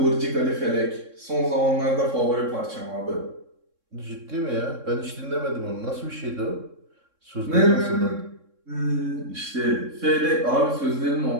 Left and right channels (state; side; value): late; left; 3.6 ms